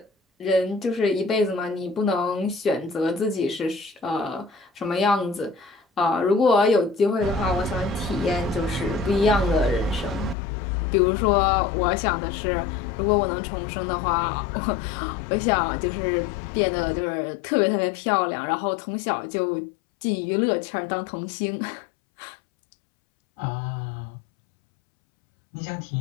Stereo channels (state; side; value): drops out; right; at 10.4 s